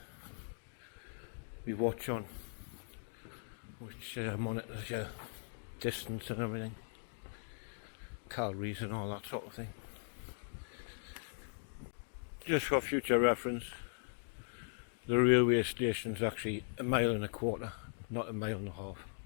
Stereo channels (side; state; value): right; silent; digital silence